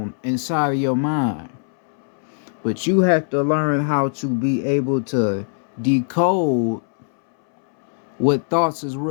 inside of your mind. But you have to learn how to be able to decode what thoughts is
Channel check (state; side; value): silent; right; 65 dB below the other